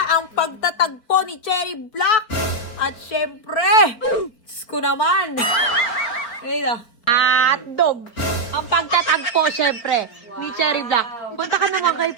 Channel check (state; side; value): late; right; 4.4 ms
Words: ang pagtatagpo ni Cherry Black. At syempre, Diyos ko naman. Ayun dog. Ang pagtatagpo syempre ni Cherry Black. Punta ka naman kay